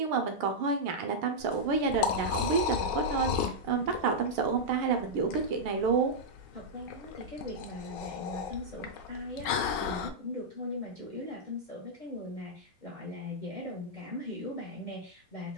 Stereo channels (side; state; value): both; normal; correlation -0.07